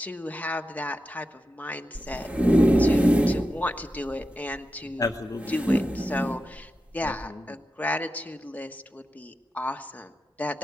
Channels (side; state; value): both; normal; correlation 0.90